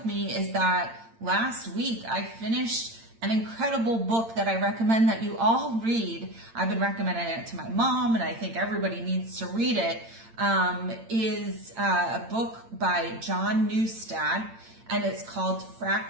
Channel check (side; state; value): left; late; 8.8 ms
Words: me is that last week I finished an incredible book that I recommend that you all read. I've been recommending it to my mom, and I think everybody needs to read it. Is a book by John Newstad, and it's called